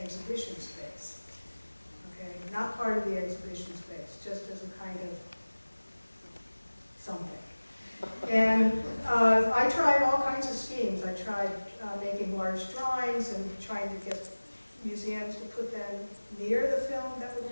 space. Okay, not part of the exhibition space, just as a kind of something. And I tried all kinds of schemes. I tried making large drawings and trying to get museums to put them near the film that would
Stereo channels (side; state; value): both; inverted; correlation -1.00